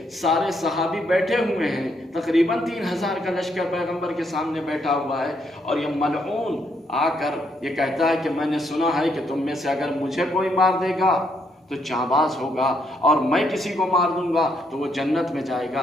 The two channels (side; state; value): both; normal; correlation 0.74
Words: سارے صحابی بیٹھے ہوئے ہیں، تقریباً 3000 کا لشکر پیغمبر کے سامنے بیٹھا ہوا ہے، اور یہ ملعون آ کر یہ کہتا ہے کہ میں نے سنا ہے کہ تم میں سے اگر مجھے کوئی مار دے گا تو جانباز ہوگا اور میں کسی کو مار دوں گا تو وہ جنت میں جائے گا۔